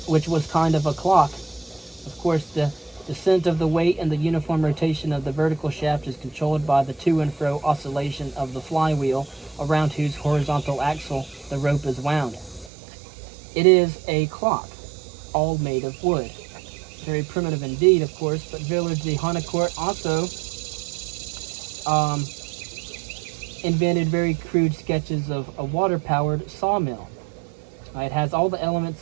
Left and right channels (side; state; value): left; drops out; at 12.7 s